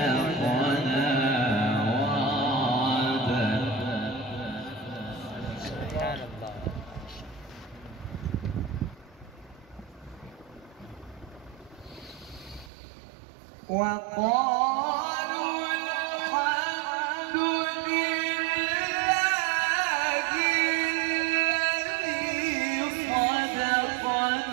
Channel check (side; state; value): left; drops out; at 12.7 s